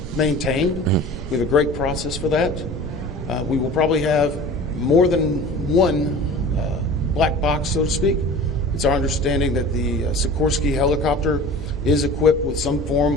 maintained. We have a great process for that. We will probably have more than one black box, so to speak. It's our understanding that the Sikorsky helicopter is equipped with some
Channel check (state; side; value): normal; both; correlation 0.39